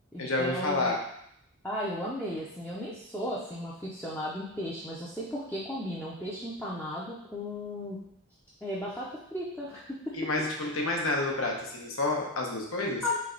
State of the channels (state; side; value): normal; both; correlation 0.16